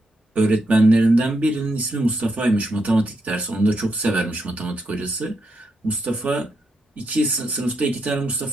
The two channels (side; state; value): both; normal; correlation 0.81